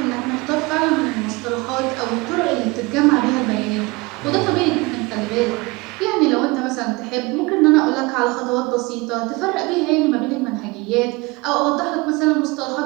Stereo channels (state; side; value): quieter; left; 24.5 dB